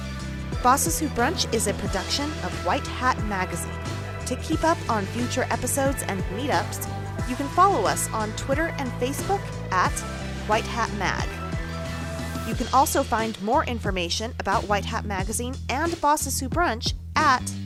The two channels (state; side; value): identical; both; correlation 1.00